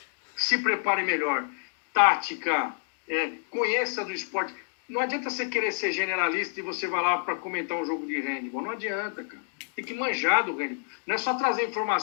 Se prepare melhor. Tática, conheça do esporte. Não adianta você querer ser generalista e você vai lá para comentar um jogo de handball. Não adianta, cara. Tem que manjar do handball. Não é só trazer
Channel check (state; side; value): silent; right; digital silence